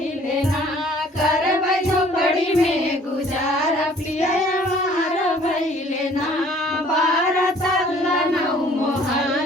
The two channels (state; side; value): normal; both; correlation 0.55